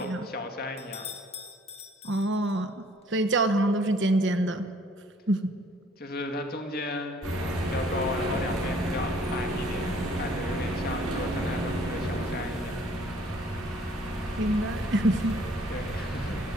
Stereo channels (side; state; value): both; normal; correlation 0.59